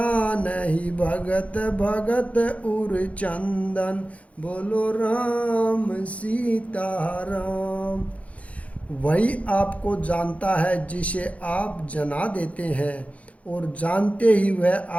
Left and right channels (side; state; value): right; late; 0.066 ms